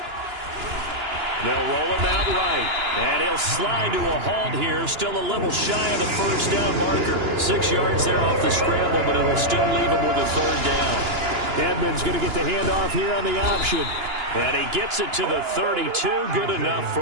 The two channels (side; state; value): left; late; 2.9 ms